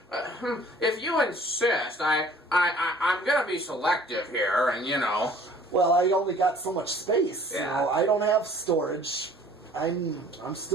if you insist, I'm gonna be selective here, and Well, I only got so much space. Yeah. I don't have storage. I'm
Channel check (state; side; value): normal; both; correlation 0.52